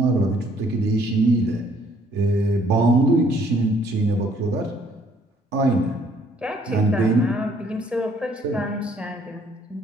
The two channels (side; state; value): both; normal; correlation 0.63